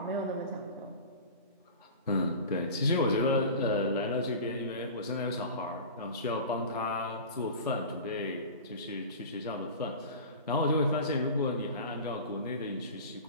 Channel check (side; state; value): both; inverted; correlation -0.34